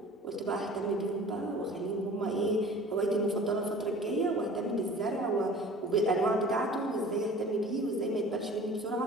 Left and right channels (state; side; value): normal; both; correlation 0.44